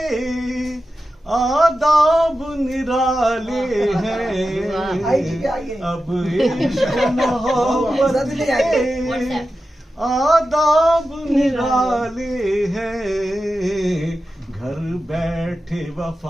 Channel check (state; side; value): normal; both; correlation 0.92